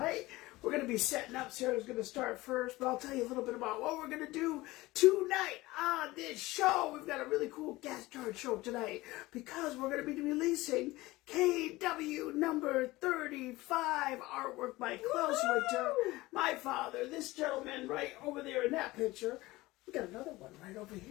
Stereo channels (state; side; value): quieter; right; 19.5 dB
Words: We're going to be setting up. Sarah's going to start first, but I'll tell you a little bit about what we're going to do tonight on this show. We've got a really cool guest star show tonight because we're going to be releasing KW number 35 artwork by Klaus Winter, my father, this gentleman right over there in that picture. We got another one right over